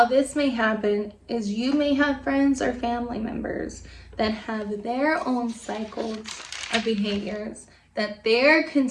this may happen is, you may have friends or family members that have their own cycles of behaviors that they're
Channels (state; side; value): identical; both; correlation 1.00